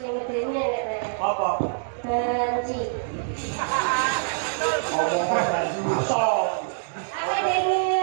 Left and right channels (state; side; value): silent; left; digital silence